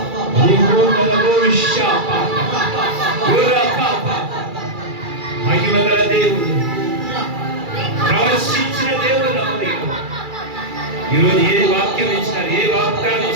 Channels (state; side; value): late; left; 2.3 ms